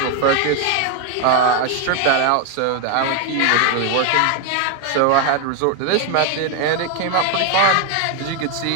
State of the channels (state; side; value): different; both; correlation 0.01